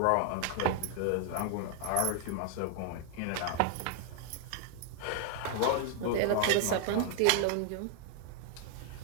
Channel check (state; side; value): different; both; correlation 0.00